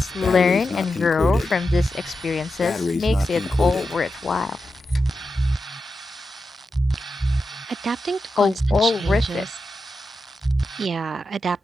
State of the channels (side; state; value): both; normal; correlation 0.89